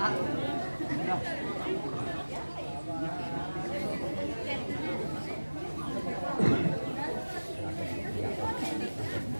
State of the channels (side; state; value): both; inverted; correlation -1.00